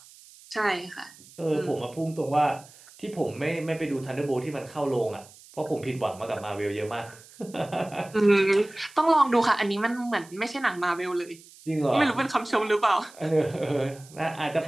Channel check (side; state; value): right; noise; hiss, 22 dB below the sound